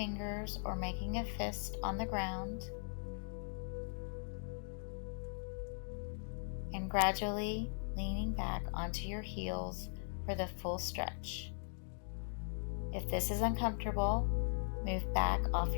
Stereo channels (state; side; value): silent; right; digital silence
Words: or making a fist on the ground, and gradually leaning back onto your heels for the full stretch. If this is uncomfortable, move back off